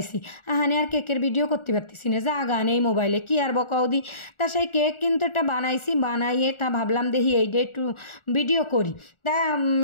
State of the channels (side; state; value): right; late; 1.4 ms